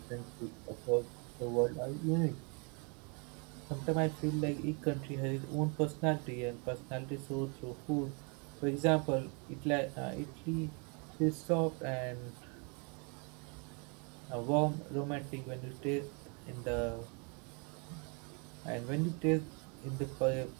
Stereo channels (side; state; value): left; quieter; 34.6 dB